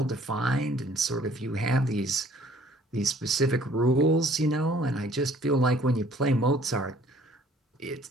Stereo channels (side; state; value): both; normal; correlation 0.57